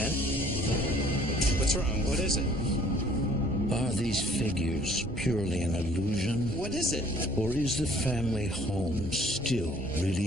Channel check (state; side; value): normal; both; correlation 0.57